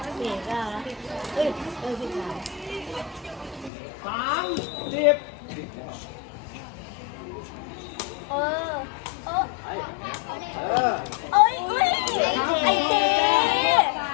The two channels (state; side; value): drops out; right; at 3.7 s